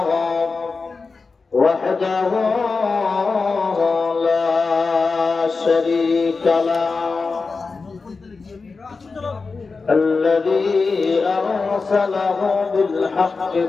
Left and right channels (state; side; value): quieter; right; 4.4 dB